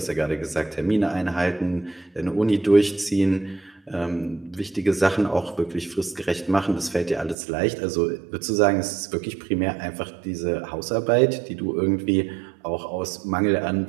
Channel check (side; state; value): left; drops out; at 7.4 s